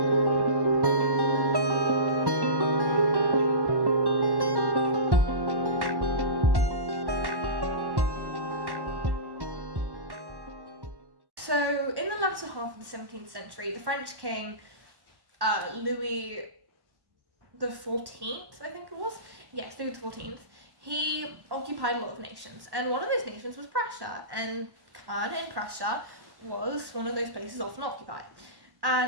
So, in the latter half of the 17th century, the French king, Louis the 14th, I think it was? Yes, Louis the 14th. He occupied a lot of nations, and one of those nations was Prussia, and Caen in Prussia was one of those places often occupied.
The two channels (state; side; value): late; left; 1.1 ms